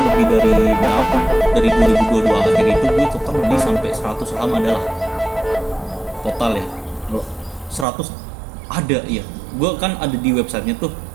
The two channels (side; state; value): left; drops out; at 7.9 s